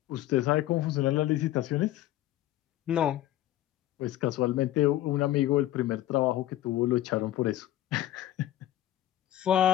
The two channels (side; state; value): right; quieter; 13.8 dB